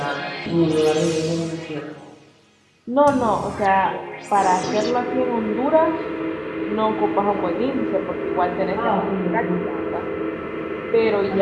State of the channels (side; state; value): both; identical; correlation 1.00